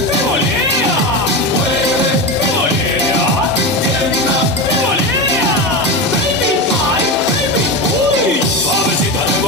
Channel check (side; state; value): both; normal; correlation 0.19